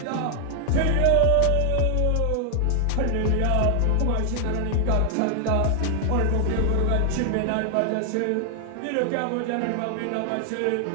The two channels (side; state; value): both; different; correlation 0.00